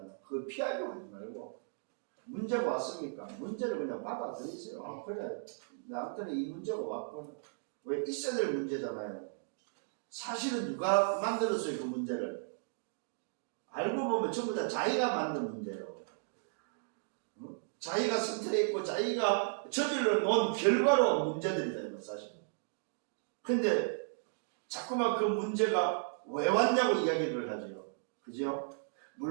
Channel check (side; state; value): left; silent; digital silence